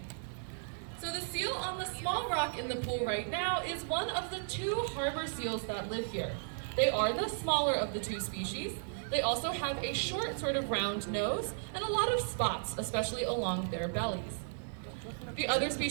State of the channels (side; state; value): left; silent; digital silence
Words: So the seal on the small rock in the pool right now is one of the two harbor seals that live here. They are the smaller of the two species. They also have a short sort of round nose and a lot of spots, especially along their bellies. The other